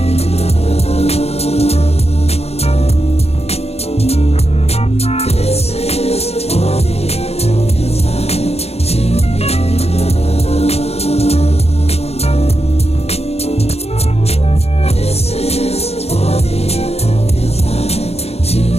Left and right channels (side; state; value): right; late; 0.30 ms